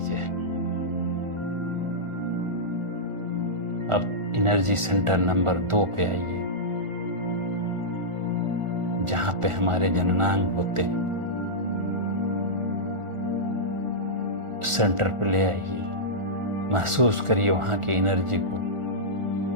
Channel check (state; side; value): late; left; 1.4 ms